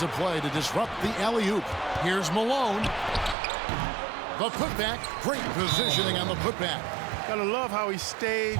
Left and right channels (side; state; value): left; drops out; at 3.4 s